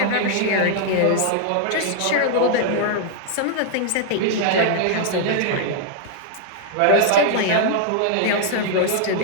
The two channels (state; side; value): different; both; correlation -0.01